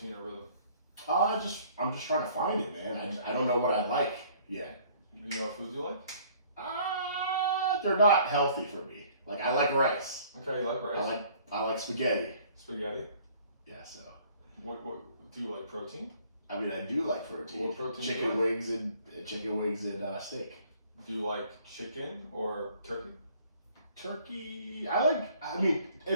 or rhythm? I'm just trying to find it, man. I don't know what I like yet. You know what foods you like? They're not healthy for me. Like I like rice. Okay, you like rice. I like spaghetti. Spaghetti? Yeah. So. What do you like? Protein? I mean, I do like protein. What protein? Chicken wings and steak. Do you like chicken or turkey? Turkey,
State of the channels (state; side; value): inverted; both; correlation -0.56